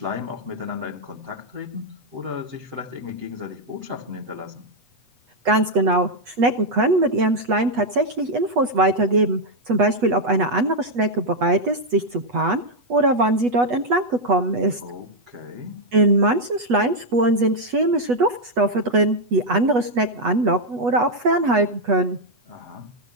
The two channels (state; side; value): late; left; 8.2 ms